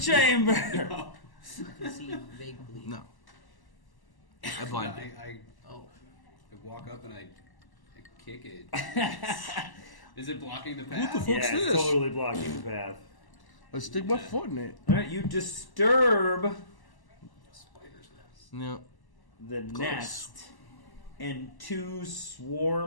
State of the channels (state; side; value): late; right; 1.0 ms